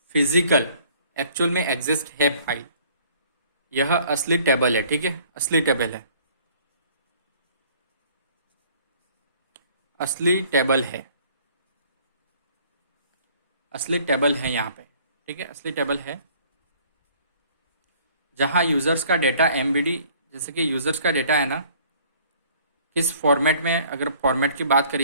फिजिकल एक्चुअल में एग्जिस्ट है फाइल, यह असली टेबल है, ठीक है, असली टेबल है, असली टेबल है, असली टेबल है यहाँ पे, ठीक है, असली टेबल है, जहाँ यूज़र्स का डेटा एमबीडी, जैसे कि यूज़र्स का डेटा है ना, किस फॉर्मेट में, अगर फॉर्मेट की बात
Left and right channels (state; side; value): inverted; both; correlation -0.56